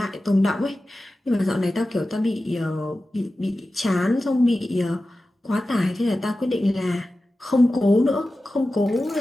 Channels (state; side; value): normal; both; correlation 0.94